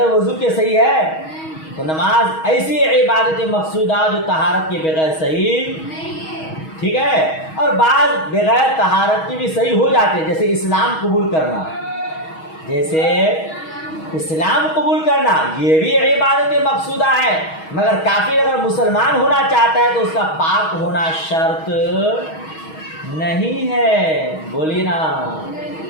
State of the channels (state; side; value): late; right; 6.3 ms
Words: وضو کے صحیح ہے, تو نماز ایسی عبادت مقصودہ جو طہارت کے بغیر صحیح, ٹھیک ہے. اور بعض بغیر طہارت کی بھی صحیح ہو جاتے ہیں, جیسے اسلام قبول کرنا, جیسے اسلام قبول کرنا, یہ بھی عبادت مقصودہ ہے. مگر کافر اگر مسلمان ہونا چاہتا ہے تو اس کا پاک ہونا شرط نہیں ہے. بولیے نا,